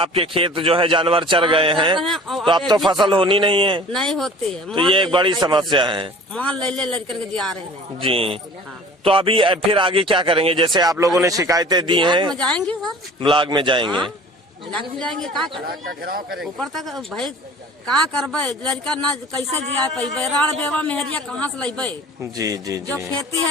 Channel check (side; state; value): both; normal; correlation 0.45